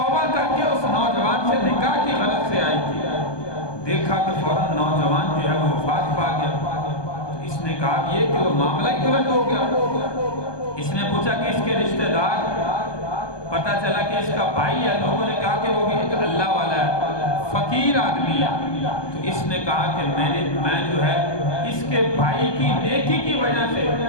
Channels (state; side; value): late; right; 1.2 ms